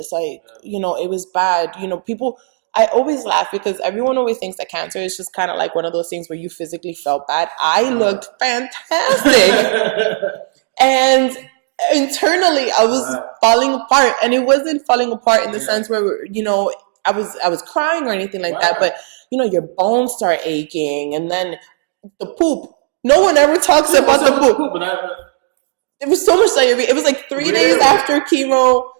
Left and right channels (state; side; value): silent; left; digital silence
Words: Like, it was bad. People, I always laugh because everyone always thinks that cancer is just kind of like one of those things where you physically felt bad. I looked fantastic. And internally I was falling apart, and it wasn't falling apart in the sense where, you know, I was crying or anything like that, but you know, your bones start aching, and then the poop. No one ever talks about the poop. But it was so much diarrhea. It was like 3 days after chemo.